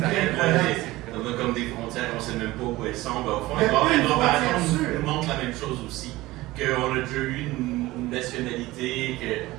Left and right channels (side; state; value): left; quieter; 18.6 dB